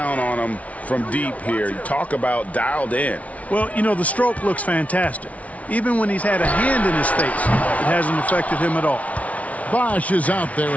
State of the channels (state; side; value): late; right; 0.067 ms